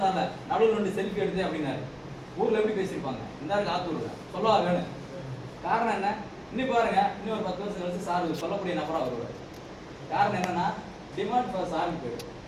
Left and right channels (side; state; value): both; identical; correlation 1.00